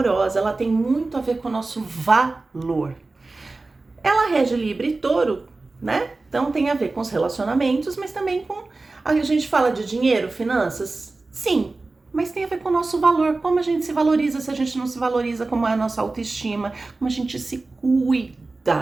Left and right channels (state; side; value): quieter; left; 3.4 dB